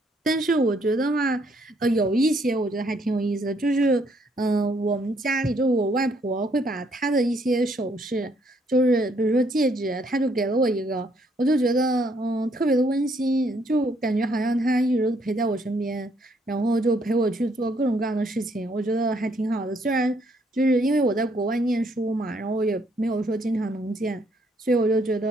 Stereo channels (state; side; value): normal; both; correlation 0.69